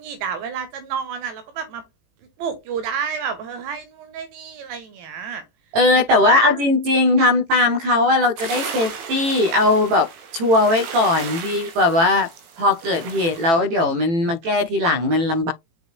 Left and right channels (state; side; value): late; left; 18 ms